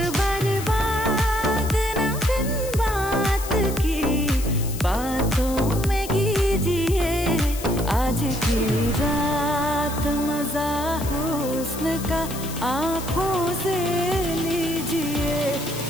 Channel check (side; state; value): left; noise; hiss, 11 dB below the sound